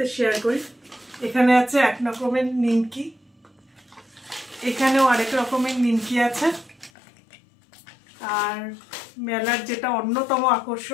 শেয়ার করি। এখানে আছে এক রকমের নিমকি, এখানেও আরেক রকমের নিমকি আছে। আর মেলার যেটা অন্যতম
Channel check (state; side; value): drops out; right; at 6.9 s